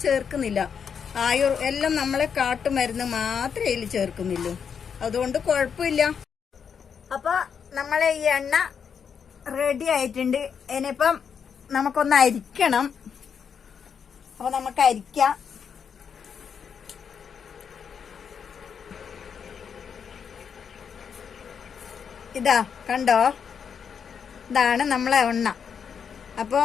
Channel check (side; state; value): right; quieter; 7.0 dB